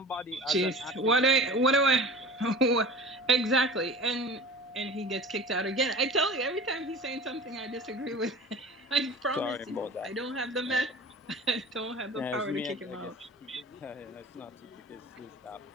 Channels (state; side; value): normal; both; correlation 0.37